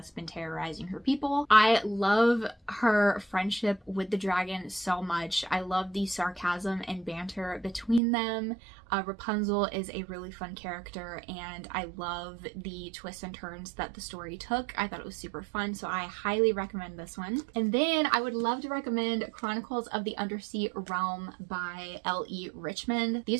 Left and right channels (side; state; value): left; drops out; at 8.0 s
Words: been terrorizing her people. I love her friendship with the dragon so much. I love the sarcasm and banter between them. Rapunzel is a really fun character, and I love the twists and turns that the story took. I thought it was super fun, so I highly recommend this one. And then I would love to recommend Chronicles of the Undersea Realm by L.E. Richmond.